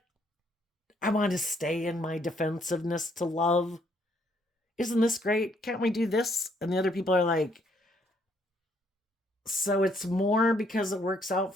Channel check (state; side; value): normal; both; correlation 0.69